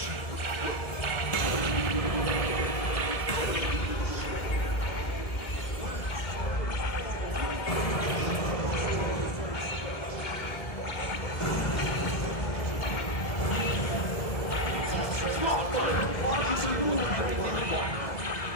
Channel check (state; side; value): late; right; 1.9 ms